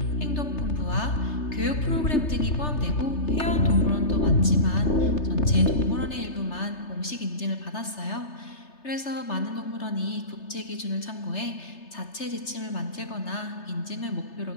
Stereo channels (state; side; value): late; right; 3.3 ms